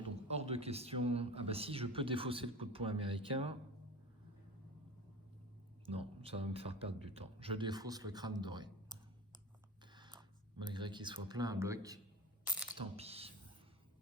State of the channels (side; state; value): both; normal; correlation 0.31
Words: donc hors de question. Ah bah si, je peux défausser le coup de poing américain. Non, ça va me faire perdre du temps. Je défausse le crâne doré. Malgré qu'il soit plein à bloc, tant pis.